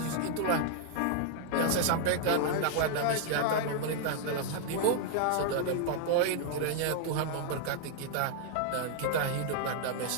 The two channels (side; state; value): both; different; correlation 0.00